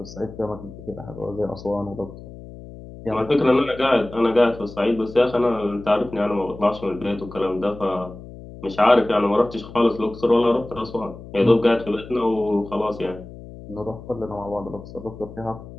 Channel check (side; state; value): left; noise; hum, 15 dB below the sound